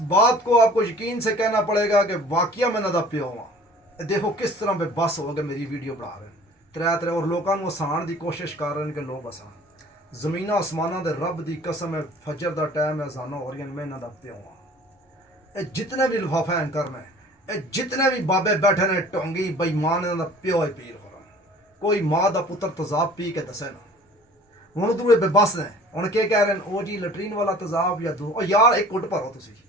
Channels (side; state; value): both; normal; correlation 0.48